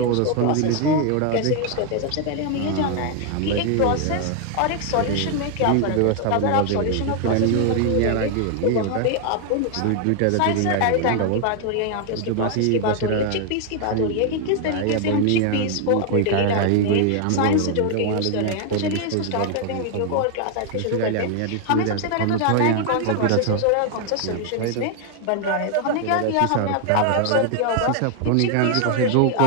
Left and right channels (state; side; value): different; both; correlation 0.00